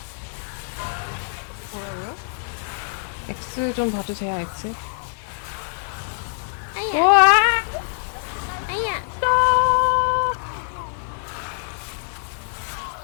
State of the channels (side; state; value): right; silent; 63 dB below the other